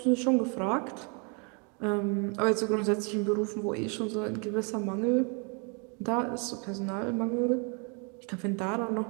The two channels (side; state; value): left; quieter; 35.5 dB